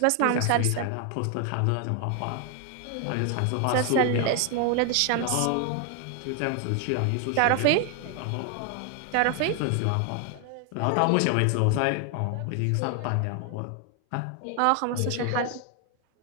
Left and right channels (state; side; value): different; both; correlation 0.00